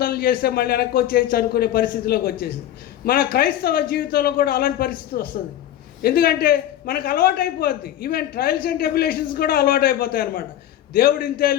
చేస్తే మళ్ళీ వెనక్కి వచ్చేసి అనుకునే పరిస్థితిలోకి వచ్చేసింది. మన క్రైస్తవ జీవితంలో కూడా అలాంటి పరిస్థితి వస్తుంది. ఎందుకంటే మనకు అలవాటు అయిపోద్ది. ఈవెన్ ట్రయల్స్ అండ్ ట్రిబ్యులేషన్స్ కూడా అలవాటు అయిపోతాయి అన్నమాట. దేవుడు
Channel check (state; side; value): quieter; right; 12.1 dB